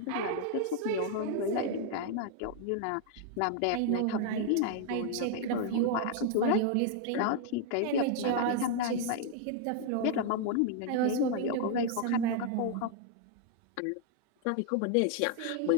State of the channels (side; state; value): both; different; correlation 0.00